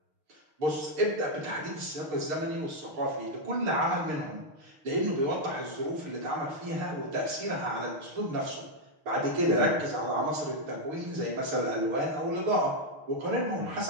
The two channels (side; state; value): left; late; 6.5 ms